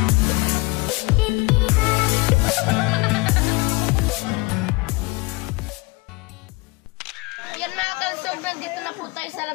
Yan mga kalusog, nandito na po tayo sa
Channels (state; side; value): quieter; right; 25.1 dB